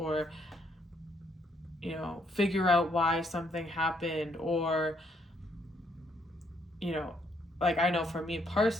you know, figure out why something happened, or, you know, like I know for me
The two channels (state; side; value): normal; both; correlation 0.71